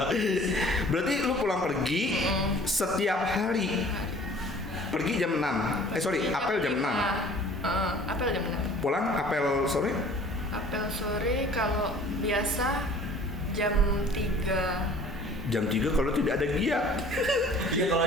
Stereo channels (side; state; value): both; normal; correlation 0.50